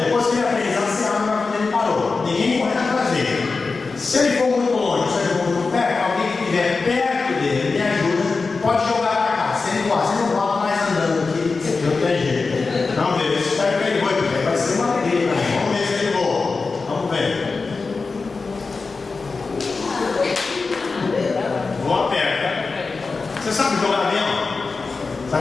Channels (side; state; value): right; quieter; 4.2 dB